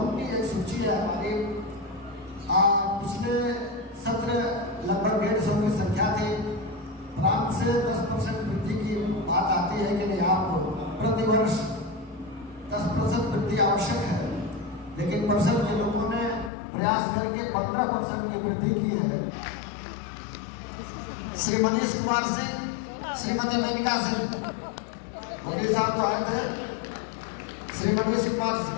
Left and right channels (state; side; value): drops out; right; at 16.5 s